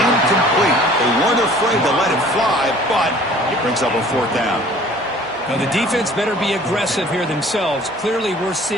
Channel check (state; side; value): normal; both; correlation 0.51